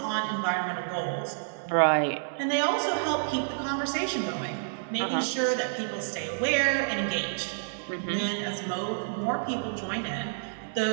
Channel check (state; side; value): silent; left; digital silence